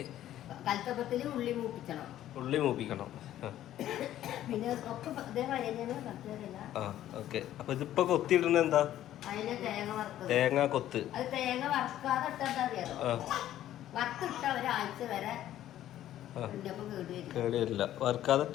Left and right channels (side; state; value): right; quieter; 12.6 dB